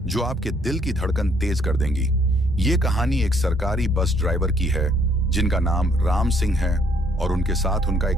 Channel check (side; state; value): both; normal; correlation 0.66